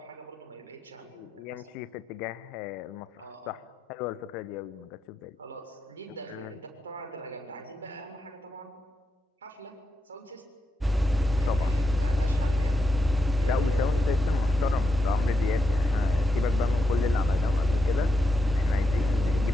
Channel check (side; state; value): both; normal; correlation 0.86